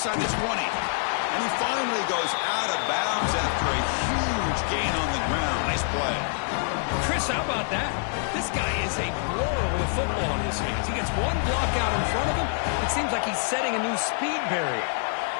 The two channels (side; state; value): right; silent; 60 dB below the other